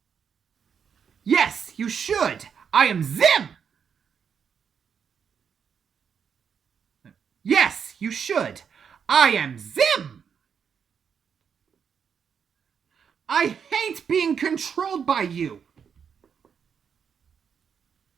Yes, you should. I am Zim. Yes, you should. I am Zim. I hate being controlled by you.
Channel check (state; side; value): quieter; left; 7.0 dB